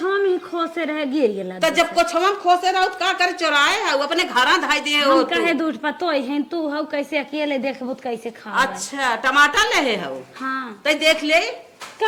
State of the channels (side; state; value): both; identical; correlation 1.00